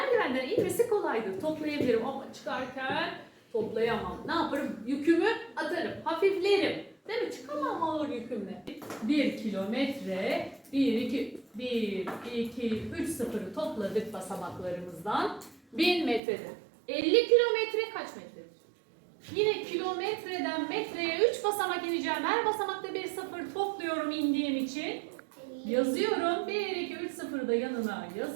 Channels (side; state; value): left; drops out; at 16.2 s